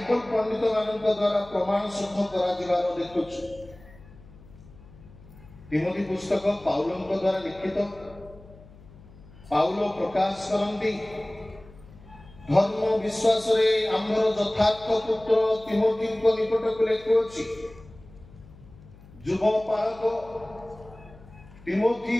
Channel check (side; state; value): left; noise; hum, 21 dB below the sound